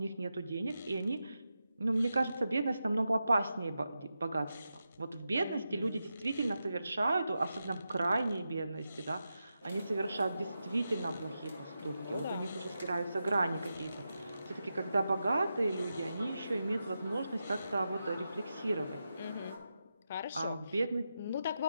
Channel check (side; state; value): both; inverted; correlation -0.89